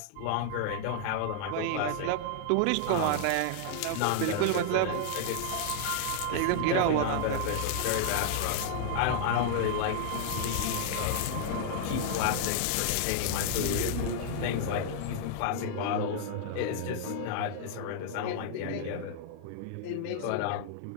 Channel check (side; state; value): both; different; correlation 0.00